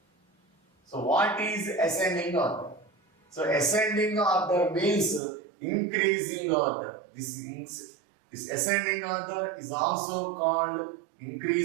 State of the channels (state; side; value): drops out; left; at 5.2 s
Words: So what is ascending order? So ascending order means increasing order. This ascending order is also called